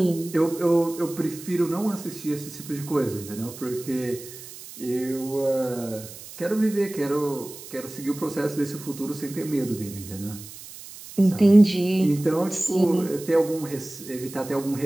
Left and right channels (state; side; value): noise; right; hiss, 15 dB below the sound